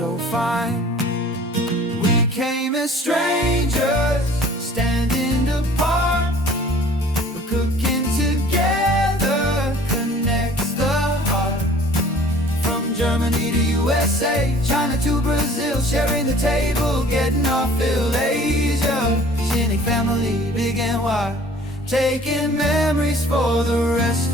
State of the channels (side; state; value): both; normal; correlation 0.50